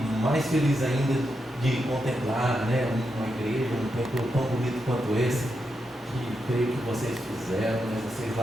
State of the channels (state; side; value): normal; both; correlation 0.85